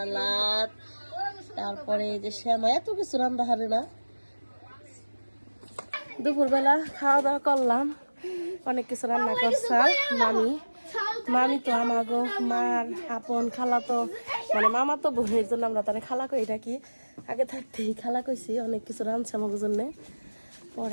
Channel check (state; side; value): inverted; both; correlation -1.00